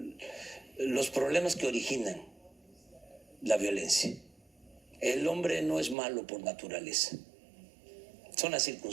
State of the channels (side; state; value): left; drops out; at 6.0 s